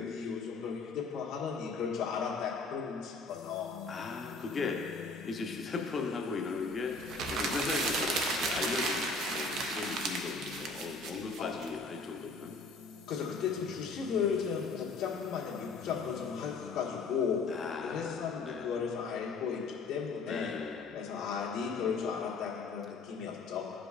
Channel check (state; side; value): quieter; right; 3.7 dB